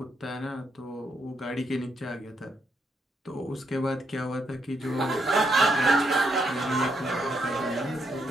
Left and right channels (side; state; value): both; normal; correlation 0.78